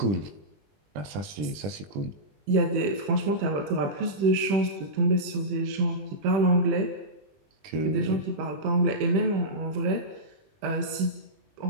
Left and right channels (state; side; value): late; left; 21 ms